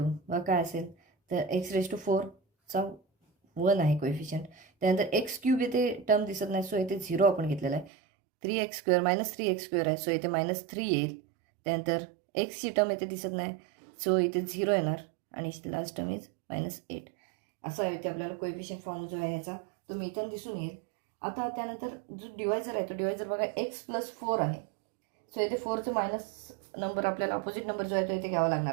बघा काय असेल तर x⁴ चा 1 आहे कोएफिशियंट. त्यानंतर x क्यूब इथे टर्म दिसत नाही सो इथे 0 आपण घेतलेला आहे. 3x स्क्वेअर -3x स्क्वेअर आहे सो इथे -3 येईल. त्यानंतर एक्सची टर्म इथे दिसत नाही सो इथे 0 येणार आणि लास्ट टर्म इज -8. असं आहे इथे आपल्याला कोएफिशियंट फॉर्म जो आहे ह्याचा तो मिथून दिसून येईल. आता त्यानंतर जो डिवायझर आहे तो डिवायझर बघा x + 4 आहे सो इथे 4चं मायनस नंबर आपल्याला अपोजिट नंबर जो आहे तो इथे घ्यावा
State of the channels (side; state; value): left; drops out; at 7.9 s